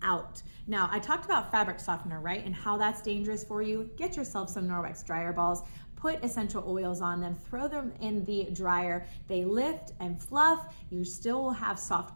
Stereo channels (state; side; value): inverted; both; correlation -1.00